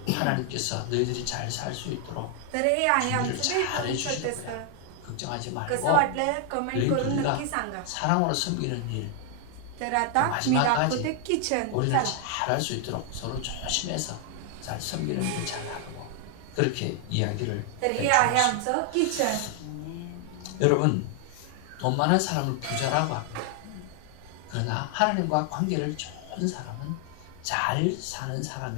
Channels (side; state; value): both; different; correlation 0.00